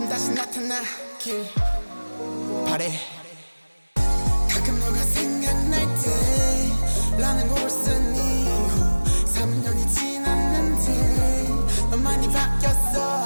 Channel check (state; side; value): inverted; both; correlation -1.00